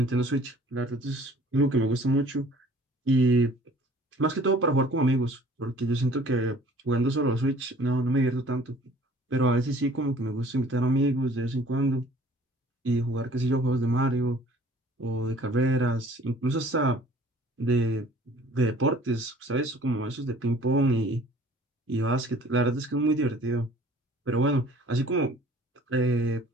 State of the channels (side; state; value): both; normal; correlation 0.52